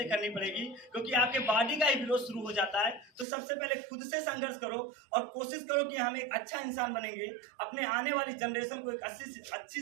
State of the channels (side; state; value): left; drops out; at 3.2 s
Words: करनी पड़ेगी, क्योंकि आपके बॉडी का ही विरोध शुरू हो जाता है। तो सबसे पहले खुद से संघर्ष करो और कोशिश करो कि हम एक अच्छा इंसान बनेंगे, अपने आने वाली जनरेशन को एक